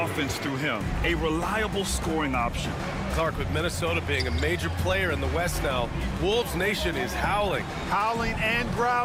through him, a reliable scoring option. Clark, with Minnesota being a major player in the West now, Wolves Nation is howling. Howling and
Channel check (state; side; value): identical; both; correlation 1.00